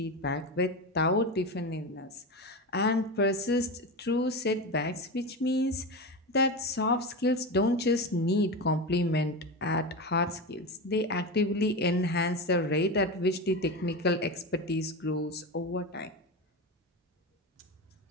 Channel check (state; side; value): normal; both; correlation 0.21